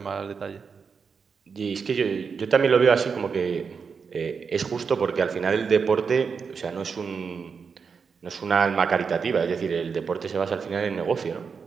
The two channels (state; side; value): quieter; left; 5.7 dB